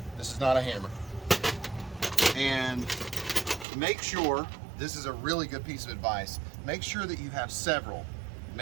This is not a hammer. And make sure, this is a really good piece of advice, make sure that you have several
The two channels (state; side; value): drops out; left; at 3.7 s